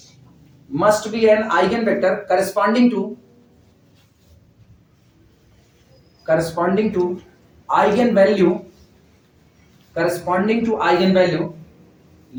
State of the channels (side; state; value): both; identical; correlation 1.00